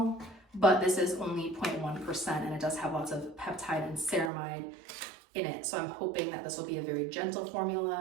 but this is only 0.1% and it does have lots of peptide and ceramide in it. So I'm hoping that this will be a very gentle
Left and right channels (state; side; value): drops out; left; at 4.3 s